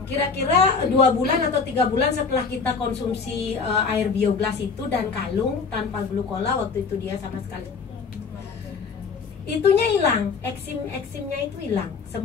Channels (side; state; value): right; quieter; 5.1 dB